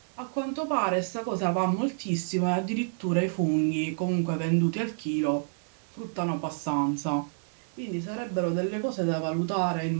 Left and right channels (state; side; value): silent; left; digital silence